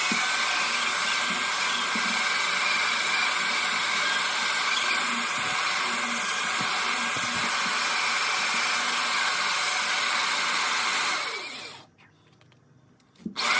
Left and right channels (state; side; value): identical; both; correlation 1.00